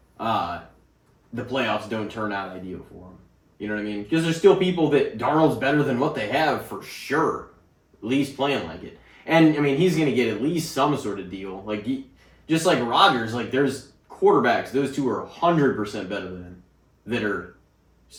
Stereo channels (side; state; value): both; identical; correlation 1.00